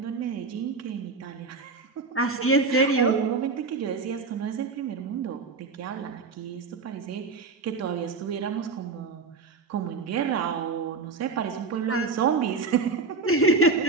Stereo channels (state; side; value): quieter; left; 4.2 dB